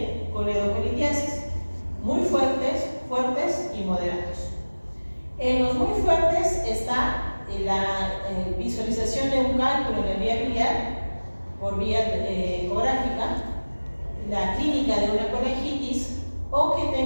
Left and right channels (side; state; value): both; inverted; correlation -1.00